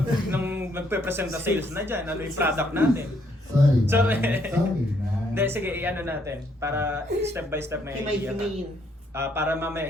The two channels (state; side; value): normal; both; correlation 0.70